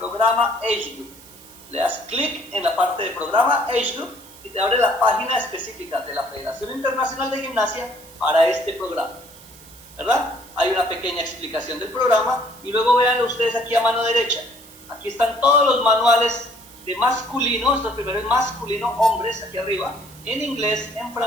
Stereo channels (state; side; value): noise; right; hiss, 21 dB below the sound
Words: Age Group. Le das clic en la parte de programa Age Group y te abre la página específica de la Federación Internacional de Gimnasia para este programa, ¿verdad? Hay una pequeña explicación del programa y luego vean ustedes aquí a mano derecha. Aquí están todos los manuales de masculino, esto primero es masculino, hombres, aquí arriba, en inglés, en